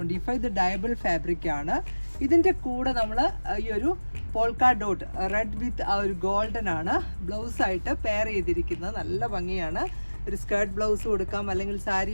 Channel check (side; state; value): both; inverted; correlation -1.00